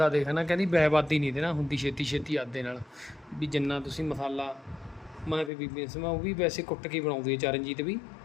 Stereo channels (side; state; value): right; drops out; at 5.5 s